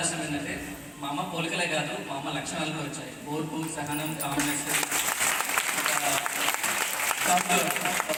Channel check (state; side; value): identical; both; correlation 1.00